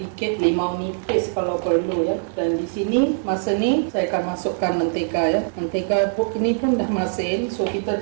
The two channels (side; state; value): left; silent; digital silence